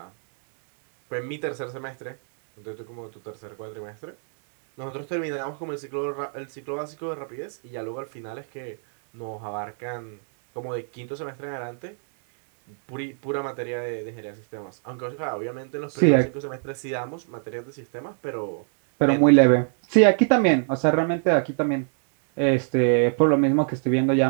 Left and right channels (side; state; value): left; silent; 55 dB below the other